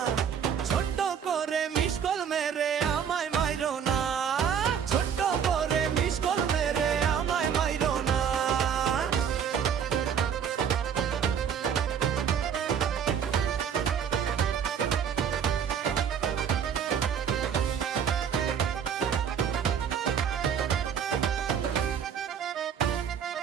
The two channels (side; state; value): left; quieter; 7.9 dB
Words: ছোট্ট করে মিস কল মেরে আমায় মাইরো না। ছোট্ট করে মিস কল মেরে আমায় মাইরো না।